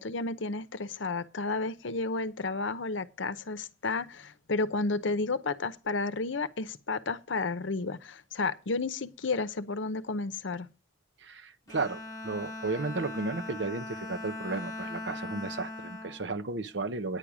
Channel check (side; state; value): both; normal; correlation -0.03